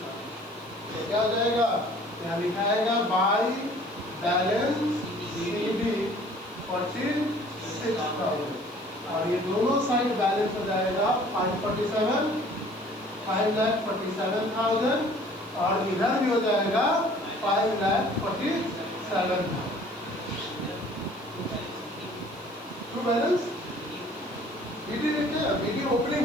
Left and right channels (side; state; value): right; noise; hiss, 26 dB below the sound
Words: तो क्या हो जाएगा? क्या लिखाएगा? बाई बैलेंस सीडी 46,000, और ये दोनों साइड बैलेंस हो जाएगा 547,000, और इधर भी हो जाएगा 5,47,000। ट्रू बैलेंस बीडी देखिए, बीडी ओपनिंग